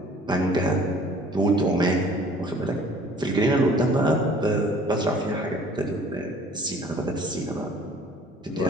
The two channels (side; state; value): both; normal; correlation 0.52